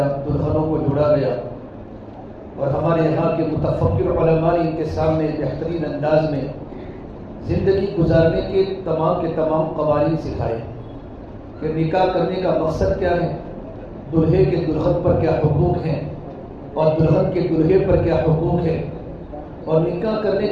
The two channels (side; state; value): both; identical; correlation 1.00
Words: دلہنوں کو جوڑا گیا. اور ہمارے یہاں کے متفکر علماء نے ان کے سامنے بہترین انداز میں زندگی گزارنے کے تمام قوانین سکھائے کہ نکاح کرنے کا مقصد کیا ہے، دلہے کے دلہن پر کیا حقوق ہیں اور دلہن کے دلہے پر کیا حقوق ہے، اور نکاح کرنے